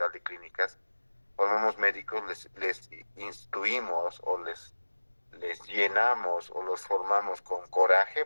de Clínicas, formamos médicos, les instruimos o les llenamos o los formamos con coraje,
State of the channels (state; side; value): inverted; both; correlation -1.00